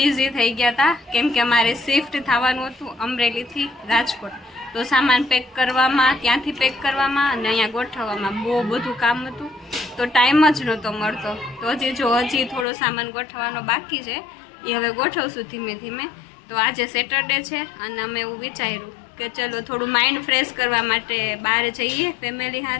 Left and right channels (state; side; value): drops out; right; at 12.7 s